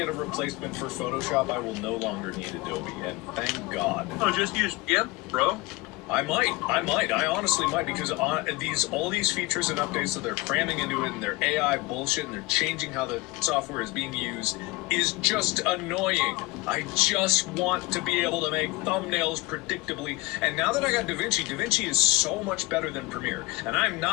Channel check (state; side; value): quieter; right; 21.2 dB